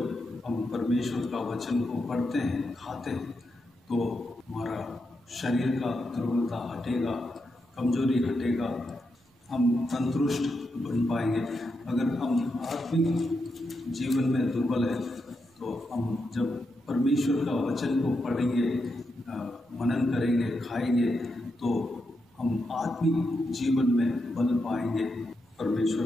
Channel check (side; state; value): both; normal; correlation 0.85